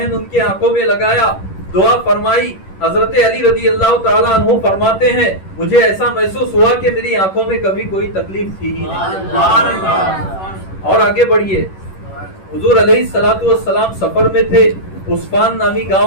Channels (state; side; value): late; right; 11 ms